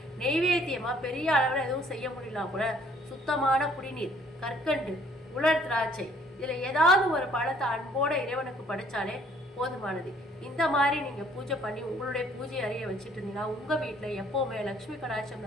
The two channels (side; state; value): both; normal; correlation 0.61